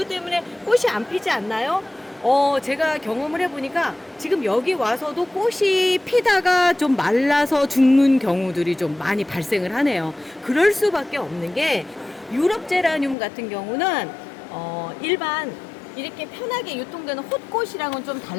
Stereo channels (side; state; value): right; drops out; at 13.2 s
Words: 때문에 꽃이 안 피지 않나요? 제가 경험을 해보니까 지금 여기 와서도 꽃이 피다가 좀 말라서 죽는 경우들이 좀 많이 발생을 하네요. 그럴 수밖에 없는 게, 유럽 제라늄 같은 경우는 일반 이렇게 편하게 유통되는 홑꽃이랑은 좀